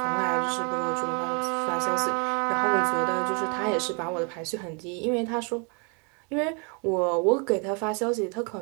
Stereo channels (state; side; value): quieter; left; 35.0 dB